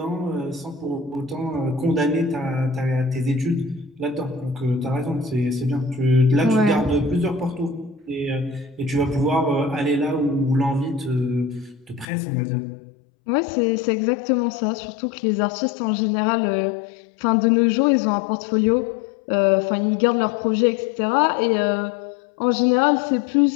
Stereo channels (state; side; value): drops out; right; at 12.1 s